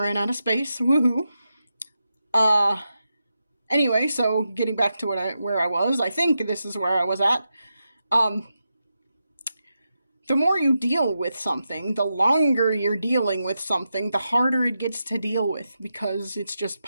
out of space. Woohoo. Anyway, so getting back to where I was, I think this is where I was at. The more you deal with something, the longer you're dealing with something, the harder it gets to deal with, because it's just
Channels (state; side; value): inverted; both; correlation -0.88